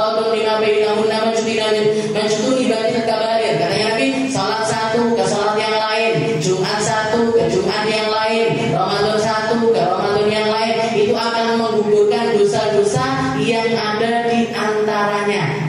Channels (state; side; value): identical; both; correlation 1.00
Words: lima bainahunna majtunibatil kabair. Katanya Nabi, salat satu ke salat yang lain, Jumat satu ke Jumat yang lain, Ramadan satu ke Ramadan yang lain, itu akan menggugurkan dosa-dosa yang ada di